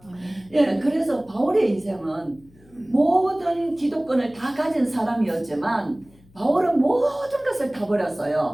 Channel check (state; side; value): noise; left; hum, 28 dB below the sound